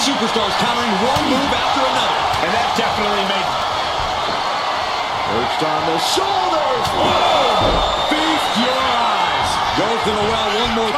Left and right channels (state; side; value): identical; both; correlation 1.00